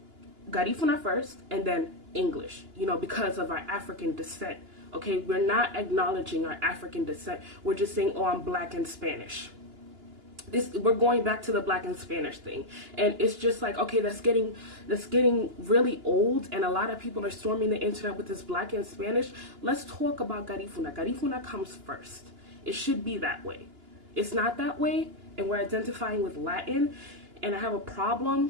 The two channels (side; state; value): left; late; 2.9 ms